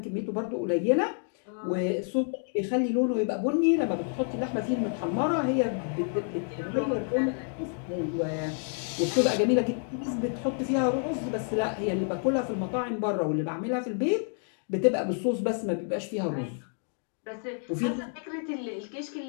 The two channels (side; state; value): right; silent; 57 dB below the other